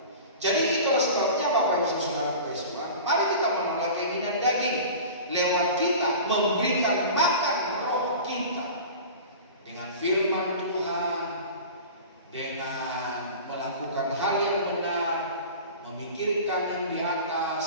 Jadi itulah sebabnya Bapak Ibu Saudara Tuhan, mari kita menolak keinginan daging lewat kita memberikan makan roh kita dengan firman Tuhan, dengan melakukan hal yang benar, memikirkan yang di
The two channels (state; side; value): inverted; both; correlation -0.37